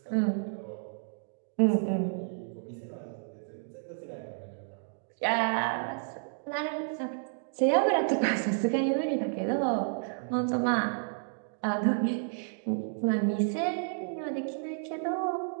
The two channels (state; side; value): silent; left; digital silence